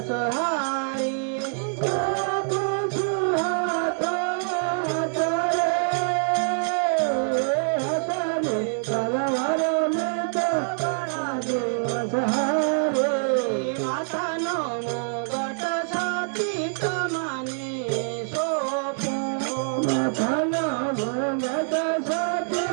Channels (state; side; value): silent; left; digital silence